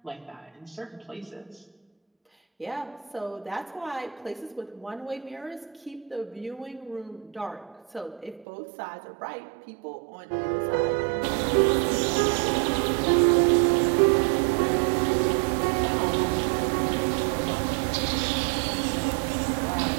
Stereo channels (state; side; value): drops out; left; at 8.5 s